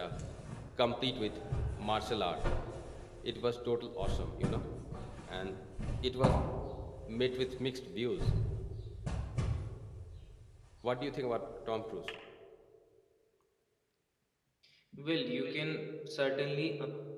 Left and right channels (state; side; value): identical; both; correlation 1.00